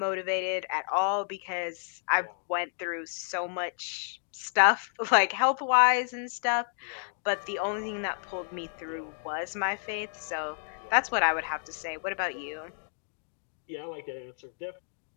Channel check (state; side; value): silent; right; digital silence